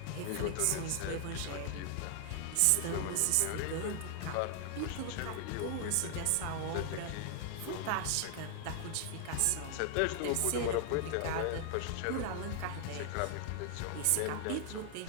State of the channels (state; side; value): different; both; correlation 0.00